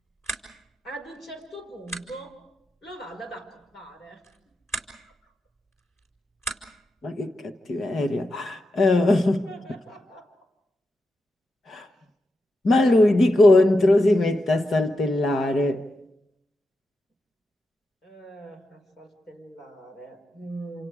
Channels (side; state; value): both; normal; correlation 0.88